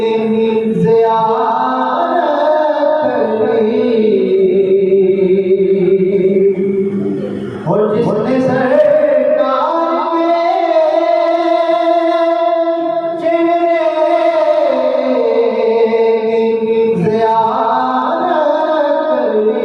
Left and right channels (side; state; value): both; identical; correlation 1.00